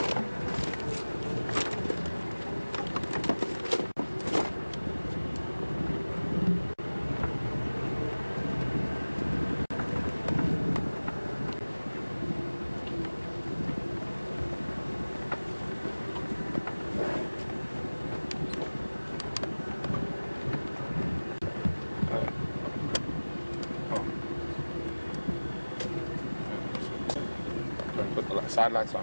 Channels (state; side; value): inverted; both; correlation -1.00